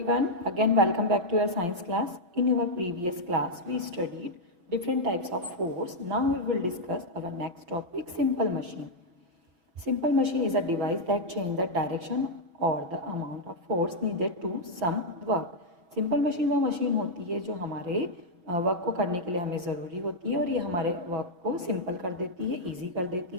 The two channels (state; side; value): late; left; 5.7 ms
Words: again welcome back to your science class. In our previous class we studied different types of force. Now we will discuss our next topic, simple machine. Simple machine is a device that changes the direction or the amount of force needed to some work. Simple machine वो machine होती है जो हमारे work को करने के लिए हमें ज़रूरी होती है और ये हमारे वर्क को सिंपल कर देती है, ईजी कर